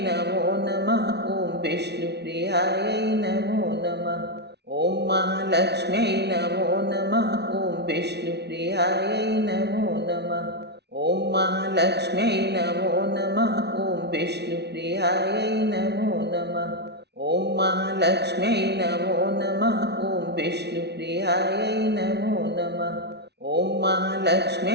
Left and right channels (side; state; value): left; late; 0.49 ms